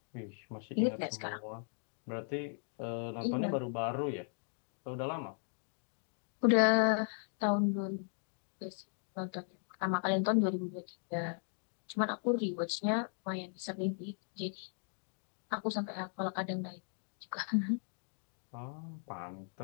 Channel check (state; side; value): silent; right; 53 dB below the other